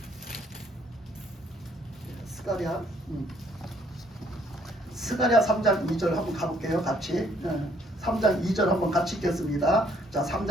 스가랴 3장 2절 한번 가볼게요. 같이 3장 2절 한번 같이 읽겠습니다. 자,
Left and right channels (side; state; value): both; normal; correlation 0.65